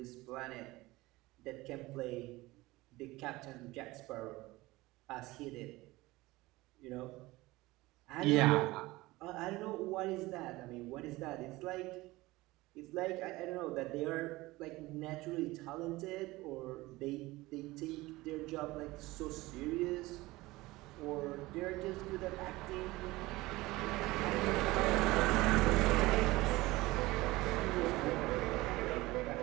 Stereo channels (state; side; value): quieter; left; 19.9 dB